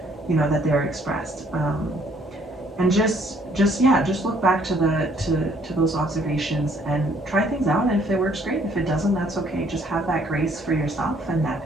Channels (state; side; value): normal; both; correlation 0.64